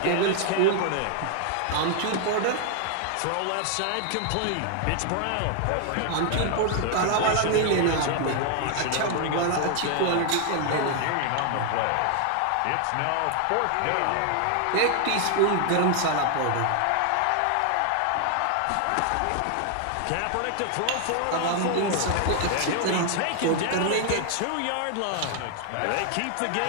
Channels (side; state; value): both; different; correlation 0.00